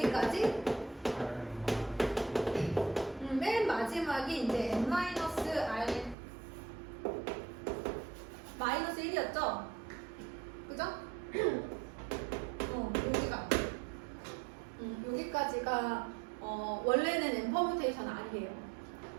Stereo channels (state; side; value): drops out; left; at 6.2 s